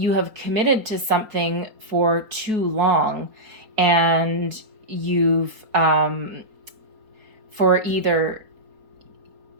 have committed to something for too long, and you've, for either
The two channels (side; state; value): left; late; 4.3 ms